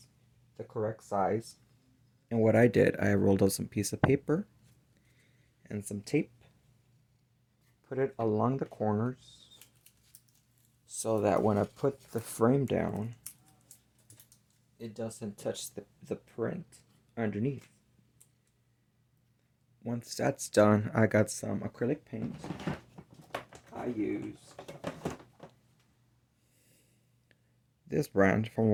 the correct size. And what I did, I rolled out some piece of paper and some tape, put it along the corners so that when I put the frame down, it doesn't touch the print underneath. Once that's done, I got some acrylic paint. I used this brand from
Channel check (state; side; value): identical; both; correlation 1.00